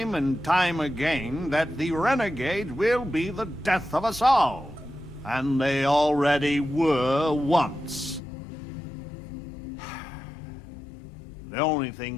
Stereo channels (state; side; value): drops out; right; at 8.2 s